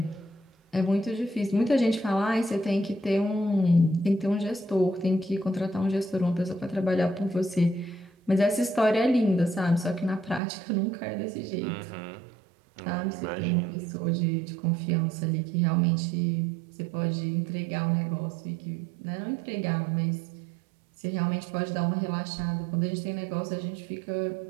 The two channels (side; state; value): left; drops out; at 10.4 s